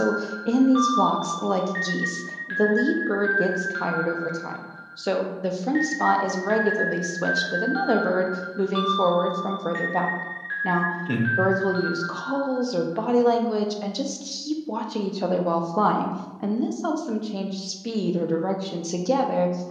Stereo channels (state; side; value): identical; both; correlation 1.00